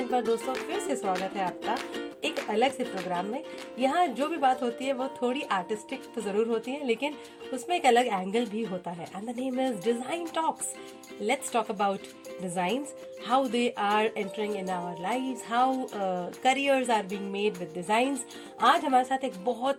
पर दोस्तों फिर से स्वागत है आपका एक अलग से प्रोग्राम में। यहाँ जो भी बात होती है वो थोड़ी आर्टिस्टिक तो ज़रूर होती है, लेकिन उसमें एक अलग एंगल भी होता है। And the name is design talks. Let's talk about designs, how they are entering in our lives, how careers are being made with designs. आज हमारे साथ एक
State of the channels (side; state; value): both; identical; correlation 1.00